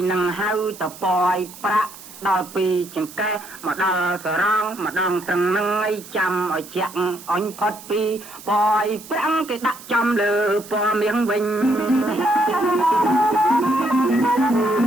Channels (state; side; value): noise; right; hiss, 17 dB below the sound